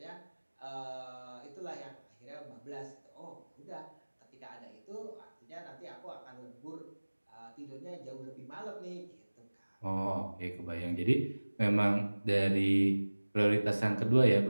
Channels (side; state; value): both; inverted; correlation -1.00